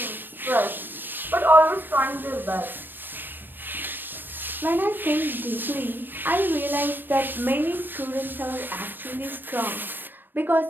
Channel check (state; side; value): late; left; 0.094 ms